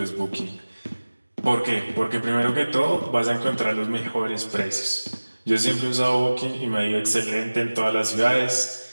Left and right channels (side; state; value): both; inverted; correlation -1.00